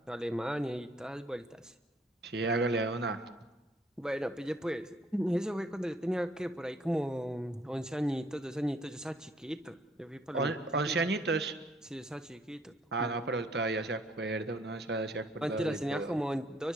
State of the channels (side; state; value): both; normal; correlation 0.64